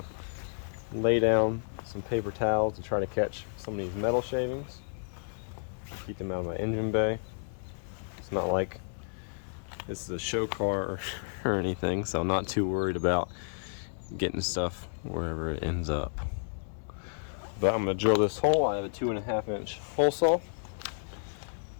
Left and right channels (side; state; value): right; silent; digital silence